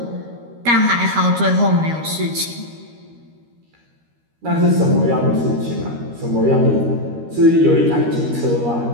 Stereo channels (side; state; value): left; late; 13 ms